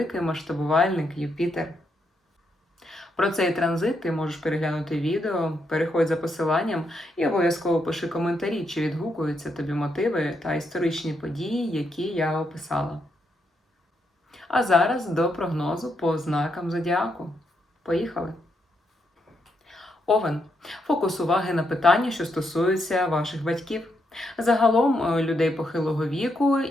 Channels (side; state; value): both; normal; correlation 0.79